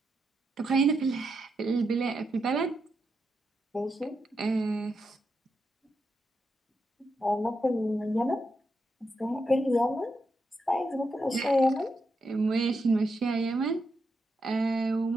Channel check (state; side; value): normal; both; correlation 0.84